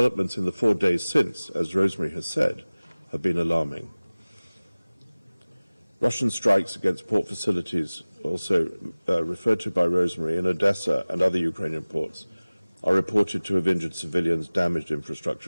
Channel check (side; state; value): both; inverted; correlation -1.00